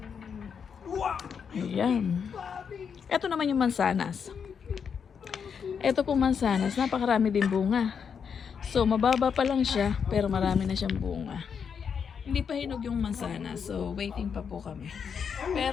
Ayan. Ito naman yung mansanas. Ito po mansanas, napakarami din bunga. So, mababa pa lang siya, pero marami na siyang bunga. Hindi pa hinog yung mansanas, so waiting pa po kami.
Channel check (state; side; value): quieter; right; 6.8 dB